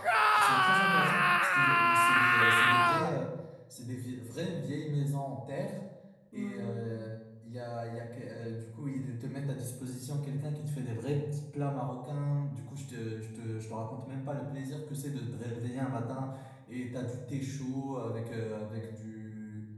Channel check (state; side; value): identical; both; correlation 1.00